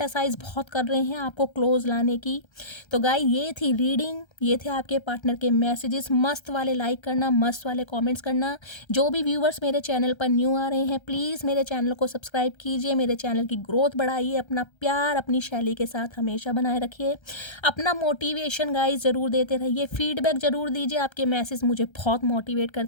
बहुत कर रहे हैं आपको क्लोज लाने की। तो गाइस ये थी रीडिंग, ये थे आपके पार्टनर के मैसेजेस। मस्त वाले लाइक करना, मस्त वाले कमेंट्स करना। जो भी व्यूवर्स मेरे चैनल पर न्यू आ रहे हैं, प्लीज़ मेरे चैनल को सब्सक्राइब कीजिए, मेरे चैनल की ग्रोथ बढ़ाइए। अपना प्यार अपनी शैली के साथ हमेशा बनाए रखिए। अपना मोटिवेशन गाइस ज़रूर देते रहिए, फीडबैक ज़रूर दीजिए, आपके मैसेज मुझे बहुत मोटिवेट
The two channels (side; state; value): right; late; 1.3 ms